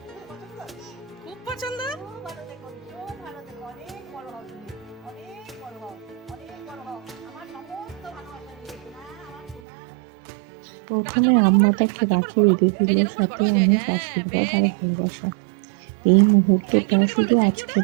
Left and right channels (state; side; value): drops out; left; at 9.6 s